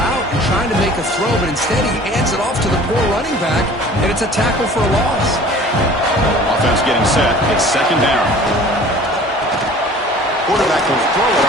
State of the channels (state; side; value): normal; both; correlation 0.47